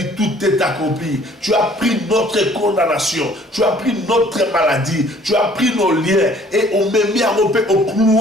tout est accompli. Tu as pris notre condamnation, tu as pris notre maladie, tu as pris nos liens et on m'a mis à romper au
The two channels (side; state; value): both; normal; correlation 0.56